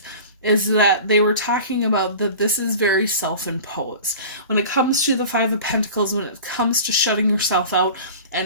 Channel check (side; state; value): both; inverted; correlation -0.38